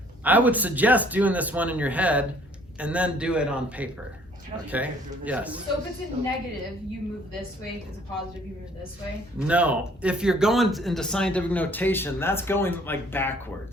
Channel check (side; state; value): both; normal; correlation 0.59